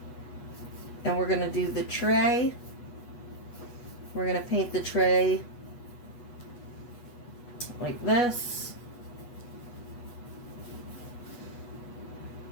And we're going to do the tray. We're going to paint the tray like this.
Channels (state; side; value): late; right; 8.2 ms